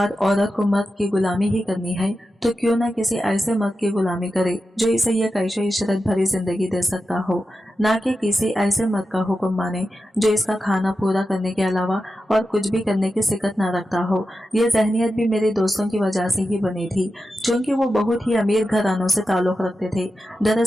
औरत को मर्द की गुलामी ही करनी है तो क्यों ना किसी ऐसे मर्द की गुलामी करे जो इसे यह कैशो इशरत भरी जिंदगी दे सकता हो, ना कि किसी ऐसे मर्द का हुक्म माने जो इसका खाना पूरा करने के अलावा और कुछ भी करने की सिकत ना रखता हो। यह जहनियत भी मेरे दोस्तों की वजह से ही बनी थी, क्योंकि वो बहुत ही अमीर घरानों से ताल्लुक रखते थे।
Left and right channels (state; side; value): normal; both; correlation 0.91